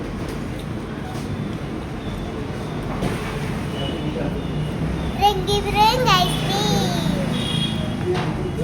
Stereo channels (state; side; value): identical; both; correlation 1.00